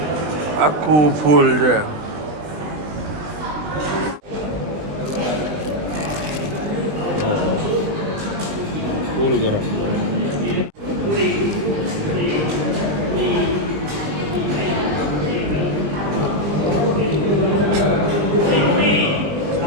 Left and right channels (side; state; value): left; late; 20 ms